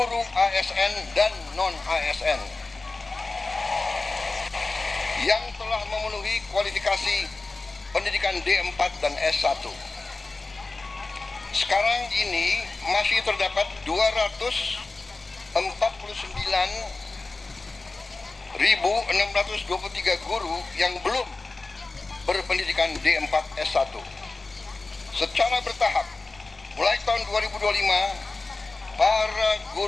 ASN dan non-ASN yang telah memenuhi kualifikasi pendidikan D4 dan S1. Sekarang ini masih terdapat 249.623 guru yang belum berpendidikan D4 S1. Secara bertahap, mulai tahun 2025, para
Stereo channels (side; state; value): right; quieter; 3.5 dB